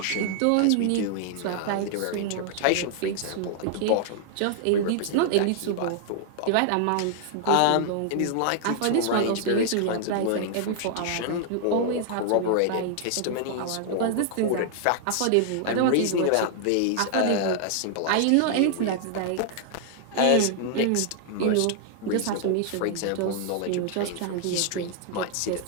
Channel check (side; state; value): both; different; correlation 0.00